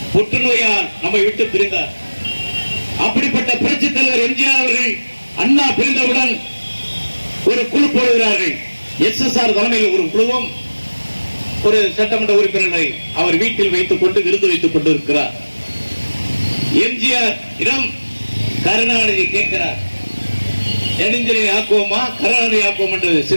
புற்றுநோயால் நம்மை விட்டு பிரிந்தார். அப்படிப்பட்ட புரட்சி தலைவர் எம்ஜிஆர் அவர்கள் அண்ணா பிரிந்தவுடன் ஒரு குழு போடுகிறார்கள். SSR தலைமையில் ஒரு குழுவும் ஒரு சட்டமன்ற உறுப்பினரை அவர் வீட்டில் வைத்துக் கொண்டு விருது வைத்துக் கொண்டிருக்கிறார். எம்ஜிஆர் இடம் கருணாநிதி கேட்கிறார், நெடுஞ்சலை ஆக்குவோமா கருணாநிதி ஆக்குவோம் என்று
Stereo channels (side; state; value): both; inverted; correlation -1.00